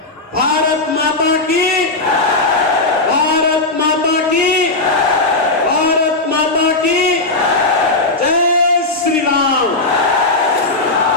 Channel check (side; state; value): right; quieter; 3.1 dB